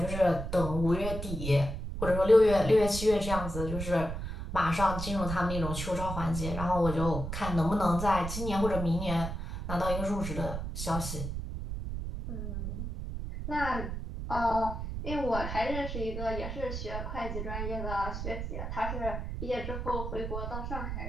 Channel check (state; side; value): noise; right; rumble, 5 dB below the sound